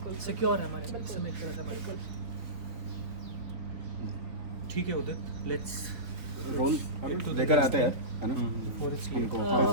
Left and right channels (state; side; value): late; left; 3.7 ms